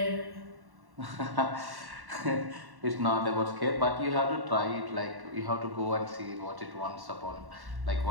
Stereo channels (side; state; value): left; late; 1.1 ms